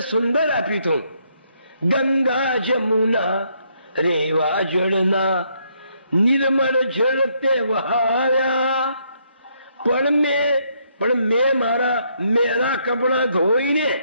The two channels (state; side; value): inverted; both; correlation -0.73